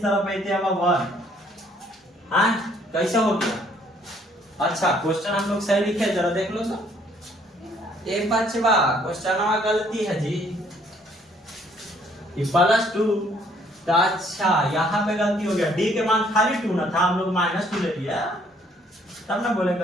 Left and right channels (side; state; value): both; normal; correlation 0.63